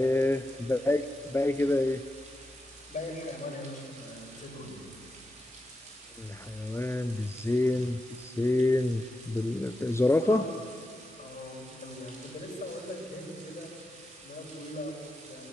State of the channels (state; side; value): normal; both; correlation 0.88